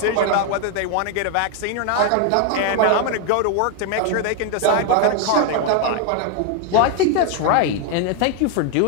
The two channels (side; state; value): both; different; correlation 0.01